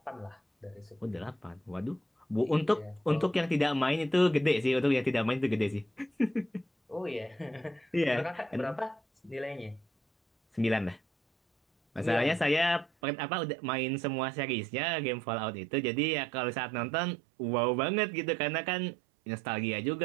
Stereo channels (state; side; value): drops out; left; at 12.9 s